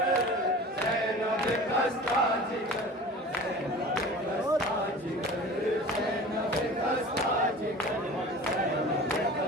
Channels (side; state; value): both; normal; correlation 0.39